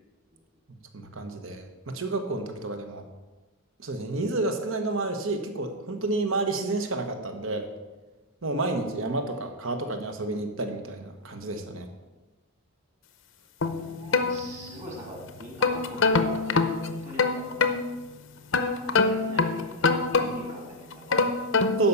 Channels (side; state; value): both; normal; correlation -0.04